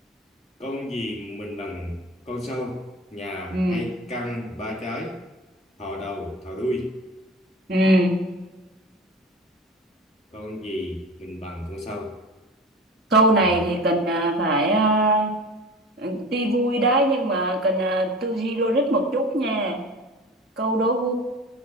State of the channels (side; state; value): both; normal; correlation 0.35